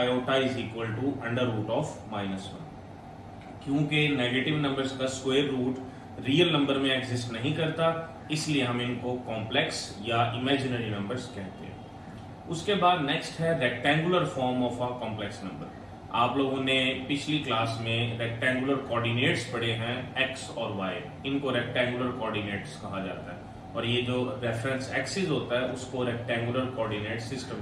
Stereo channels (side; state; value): both; identical; correlation 1.00